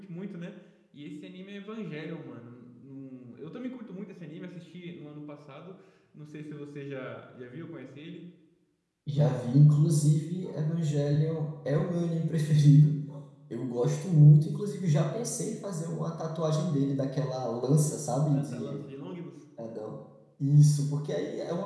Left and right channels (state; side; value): identical; both; correlation 1.00